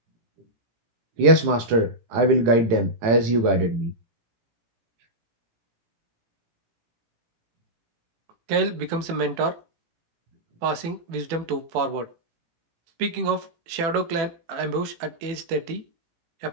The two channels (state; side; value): late; left; 18 ms